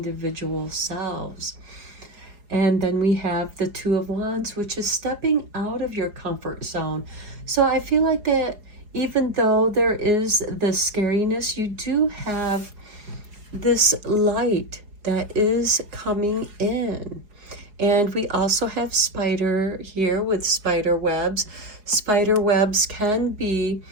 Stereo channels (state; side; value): late; left; 4.8 ms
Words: selves. And then we have the Two of Wands, which is stepping out of your comfort zone. So I feel like that even though there is the scariness, you do have this light that is coming in. And we also have spider here with spider webs. Spider webs can be